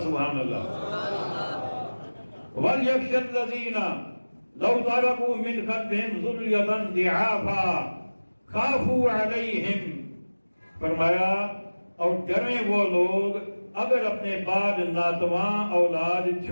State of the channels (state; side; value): inverted; both; correlation -1.00